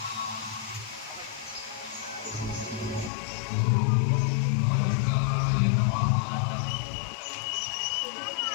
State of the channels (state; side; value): drops out; right; at 3.1 s